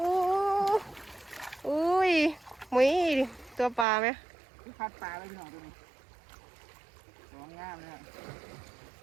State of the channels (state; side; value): drops out; left; at 3.9 s